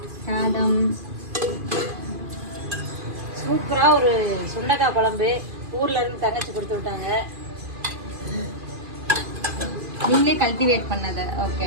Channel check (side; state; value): left; late; 2.4 ms